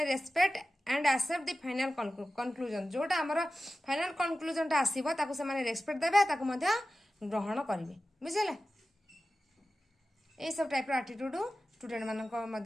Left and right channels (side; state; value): both; normal; correlation 0.95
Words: respect and accept the final conclusion जोटा हमर फाइनल कंक्लूजन टा आसीबो ताको सेमाने रेस्पेक्ट देबे ताको मध्य ग्रहण करिवे बुझिले ए सब टाइप रो एटीट्यूड स्टूडेंट मानक